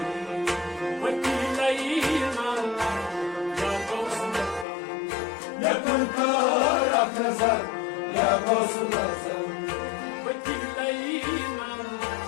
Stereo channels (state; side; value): drops out; right; at 4.7 s